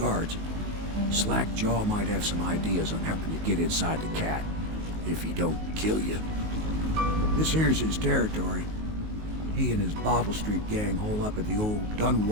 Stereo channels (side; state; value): left; late; 19 ms